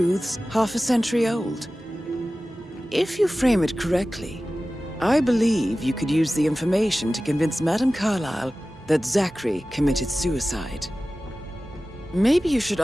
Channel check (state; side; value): normal; both; correlation 0.96